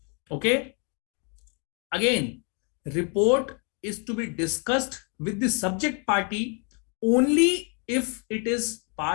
Okay. Again, report is to be discussed with the subject party only if it is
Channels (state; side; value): quieter; right; 37.5 dB